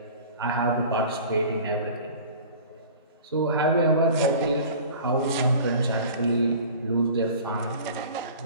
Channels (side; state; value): both; inverted; correlation -0.42